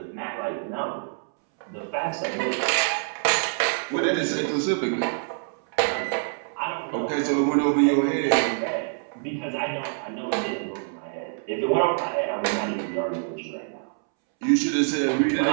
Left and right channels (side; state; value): left; silent; 61 dB below the other